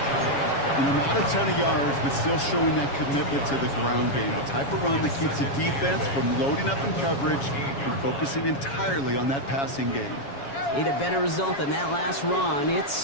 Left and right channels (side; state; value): right; late; 7.2 ms